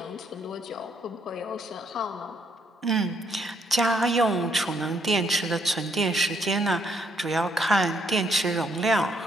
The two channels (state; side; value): normal; both; correlation 0.71